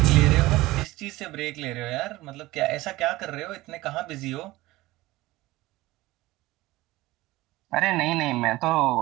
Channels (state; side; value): quieter; left; 18.8 dB